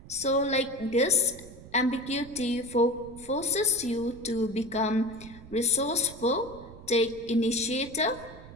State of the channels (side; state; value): right; noise; rumble, 17 dB below the sound